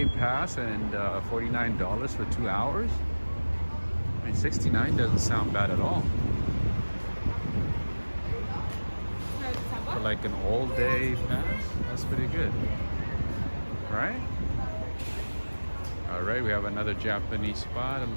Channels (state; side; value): inverted; both; correlation -1.00